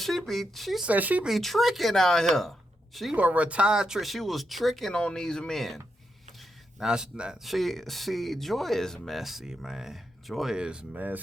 be tricking out here. She a retired trick. She was tricking on these men. Now she Joy is messy, man. Joy is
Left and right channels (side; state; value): both; normal; correlation 0.83